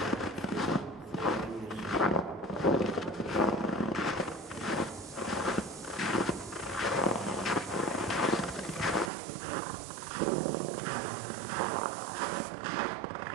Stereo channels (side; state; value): left; drops out; at 9.1 s